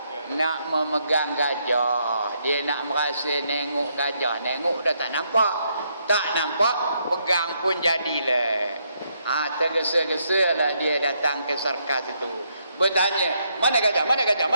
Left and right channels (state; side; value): inverted; both; correlation -0.75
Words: Nak memegang gajah. Dia nak merasa nengok gajah. Nengok dah tak nampak. Tak nampak, pegang pun jadilah. Tergesa-gesa lah dia datang ke sarkas itu. Bertanya, mana gajah? Mana gajah?